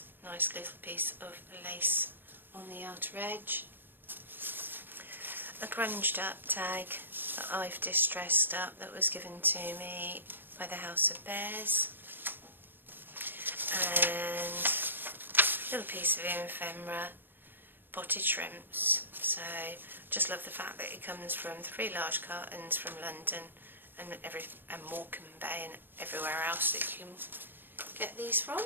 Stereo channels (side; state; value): left; late; 0.096 ms